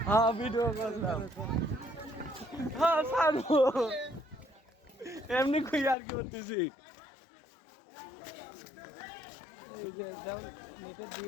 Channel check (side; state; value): right; drops out; at 6.0 s